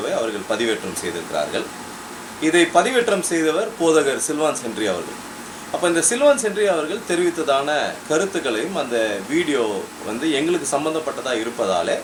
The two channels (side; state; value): both; identical; correlation 1.00